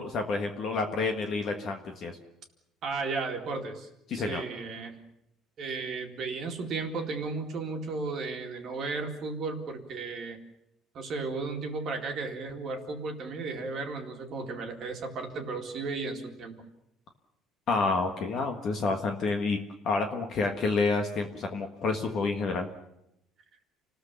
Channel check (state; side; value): normal; both; correlation 0.58